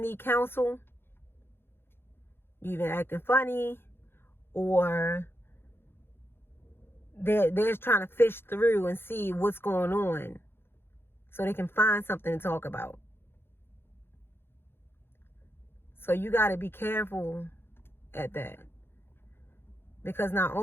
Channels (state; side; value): late; right; 0.11 ms